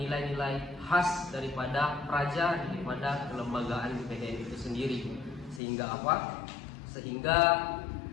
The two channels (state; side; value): drops out; right; at 5.6 s